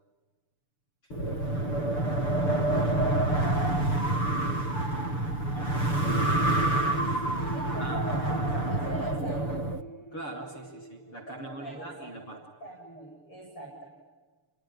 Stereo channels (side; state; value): right; late; 6.8 ms